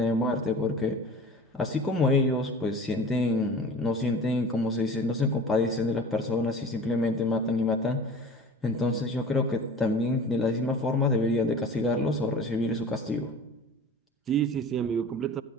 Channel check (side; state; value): both; normal; correlation 0.40